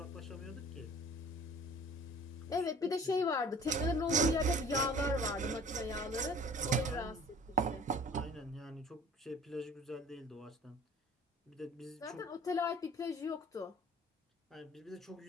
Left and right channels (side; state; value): both; normal; correlation 0.48